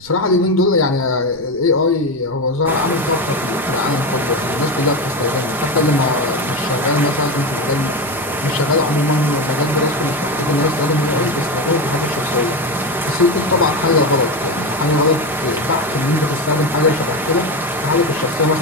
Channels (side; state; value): right; noise; rumble, 25 dB below the sound